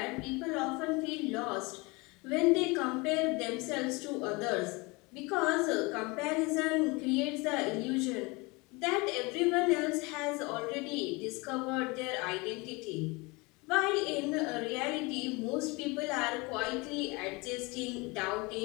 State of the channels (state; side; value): quieter; right; 26.0 dB